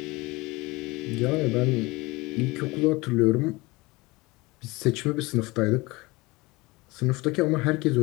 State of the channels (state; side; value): quieter; right; 22.9 dB